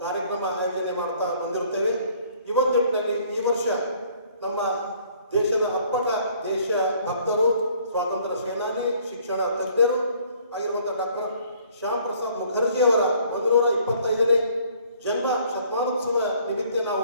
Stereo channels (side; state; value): both; inverted; correlation -0.59